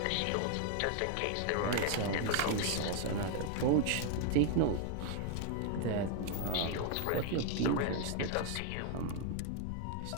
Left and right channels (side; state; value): both; different; correlation 0.00